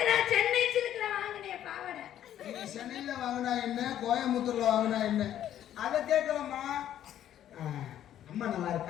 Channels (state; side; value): quieter; right; 11.2 dB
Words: நான் சென்னை சிலுக்குல வாங்கினேன் பாவாடை நீ சென்னையில வாங்கினா என்ன கோயம்புத்தூர்ல வாங்கினா என்ன அதை கேட்கலாமா அம்மா நல்லா